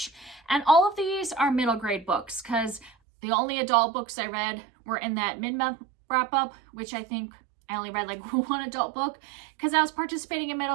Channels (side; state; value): left; drops out; at 2.9 s